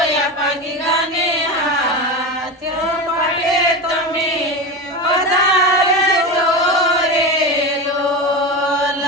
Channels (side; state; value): both; normal; correlation 0.22